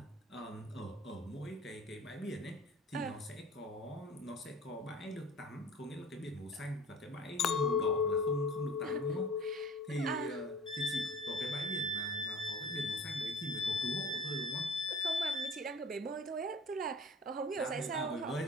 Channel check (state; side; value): normal; both; correlation 0.44